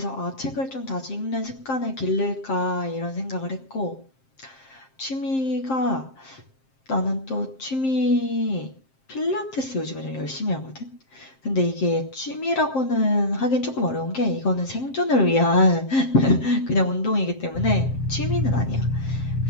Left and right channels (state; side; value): late; right; 7.6 ms